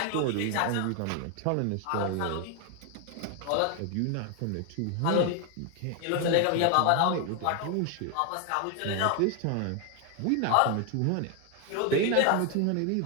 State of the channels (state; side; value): different; both; correlation 0.01